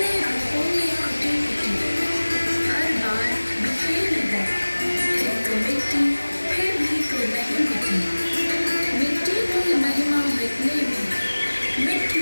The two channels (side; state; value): both; inverted; correlation -1.00